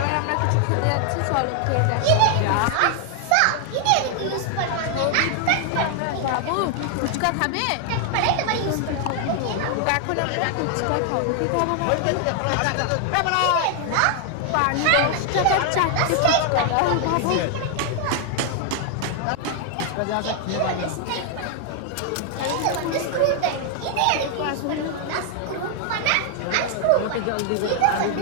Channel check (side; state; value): both; different; correlation 0.00